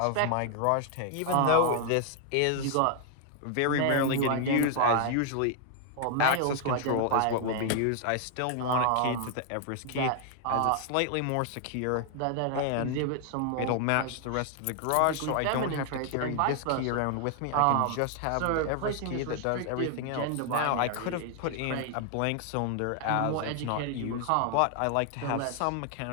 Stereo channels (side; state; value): both; different; correlation 0.00